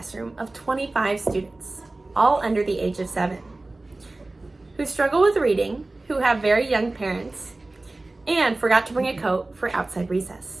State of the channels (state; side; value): quieter; left; 3.0 dB